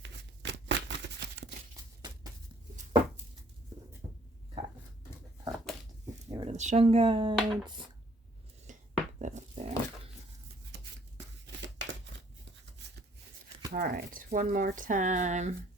Get rid of the Shungites. Put that up there. All right, one more time.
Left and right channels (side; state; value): both; normal; correlation 0.61